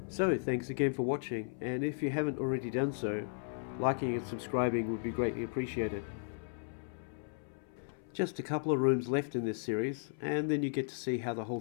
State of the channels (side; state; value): right; silent; 54 dB below the other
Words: So, thanks again for watching, and if you haven't already done so, liking and subscribing would be greatly appreciated. Just a couple of rooms left in this series, and then you get to see how the whole